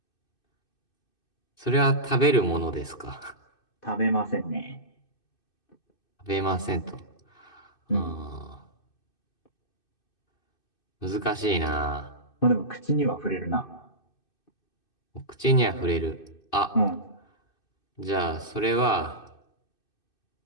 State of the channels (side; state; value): right; late; 2.6 ms